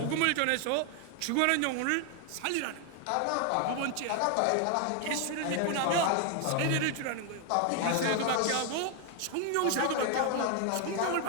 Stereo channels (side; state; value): both; different; correlation 0.01